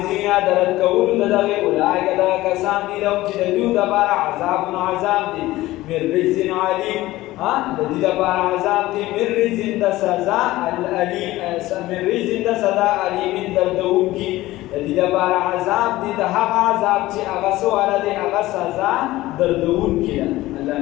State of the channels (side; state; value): right; quieter; 17.3 dB